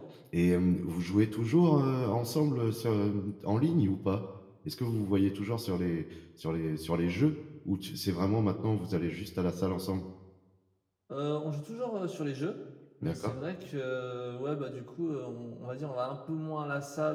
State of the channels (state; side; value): identical; both; correlation 1.00